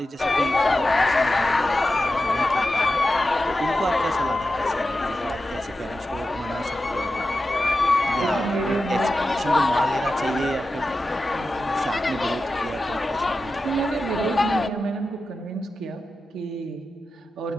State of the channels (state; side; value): normal; both; correlation 0.92